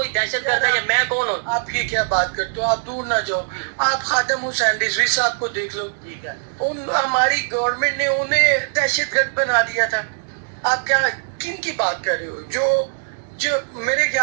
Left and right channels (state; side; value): silent; left; digital silence